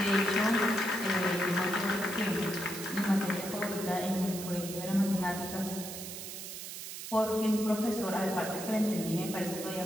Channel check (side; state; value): right; noise; hiss, 9 dB below the sound